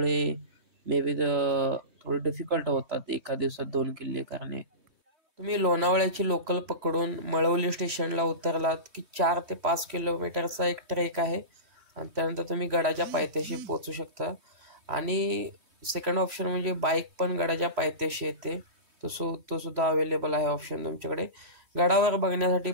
मे बी थोडं डिफिकल्ट होतात एका दिवसात 2 किल्ले करणे. तुम्ही लोणावळ्याची लोकल पकडून मळवली स्टेशनला उतरलात की 4 ते 5 किलोमीटरचा एक ट्रेक आहे आणि त्यानंतर तुम्ही गडाच्या पायथ्याशी पोहोचू शकता. आणि सेकंड ऑप्शन म्हणजे बाईक पण गडाच्या पायथ्याशी येते, तो सुद्धा अवेलेबल आहे ऑप्शन तुमच्याकडे. गडावर बघण्यासाठी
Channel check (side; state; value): left; late; 3.1 ms